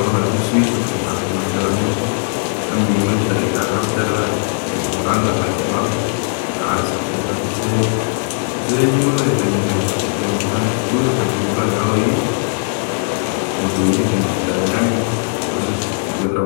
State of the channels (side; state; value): right; silent; 57 dB below the other